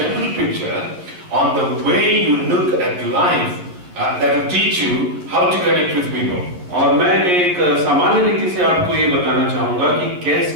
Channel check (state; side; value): late; left; 11 ms